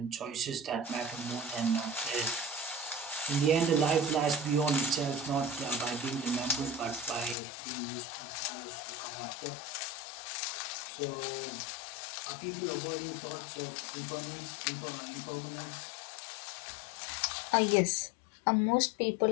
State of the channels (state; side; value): drops out; right; at 7.4 s